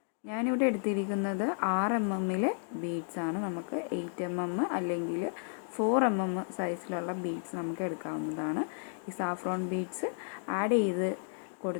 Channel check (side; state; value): right; silent; digital silence